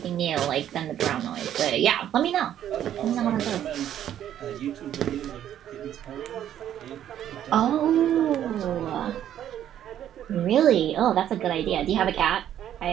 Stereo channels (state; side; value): quieter; left; 10.8 dB